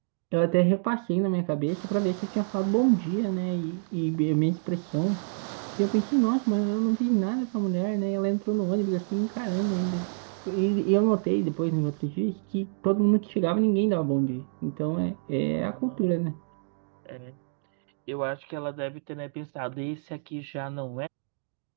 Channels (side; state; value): left; silent; digital silence